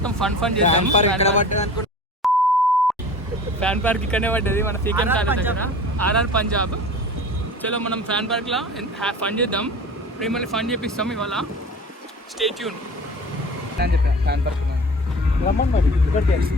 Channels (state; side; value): normal; both; correlation 0.40